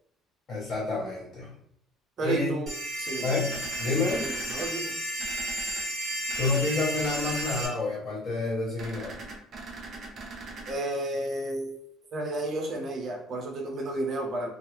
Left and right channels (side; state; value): both; normal; correlation 0.46